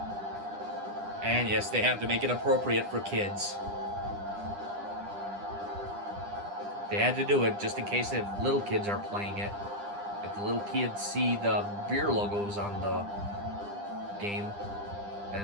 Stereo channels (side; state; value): left; late; 9.9 ms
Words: And yes, they have to make it appropriate for kids. They had to do it just in case if little kids are playing it. If the little kids see the beer logos on the game,